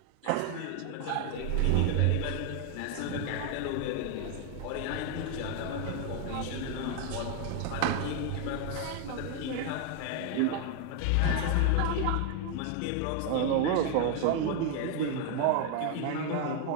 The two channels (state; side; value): different; both; correlation 0.01